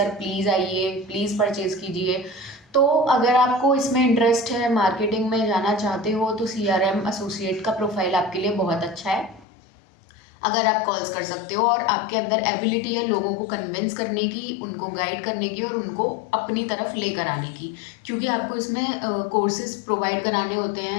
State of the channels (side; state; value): right; drops out; at 9.5 s